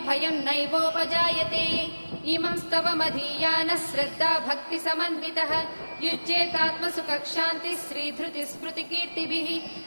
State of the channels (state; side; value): inverted; both; correlation -1.00